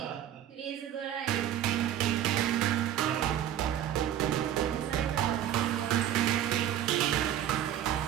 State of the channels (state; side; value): quieter; left; 11.1 dB